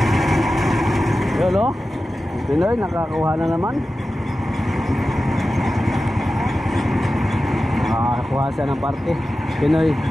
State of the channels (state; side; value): normal; both; correlation 0.94